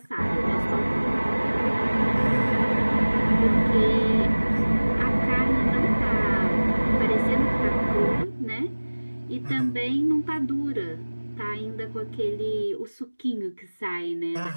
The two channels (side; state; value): both; inverted; correlation -1.00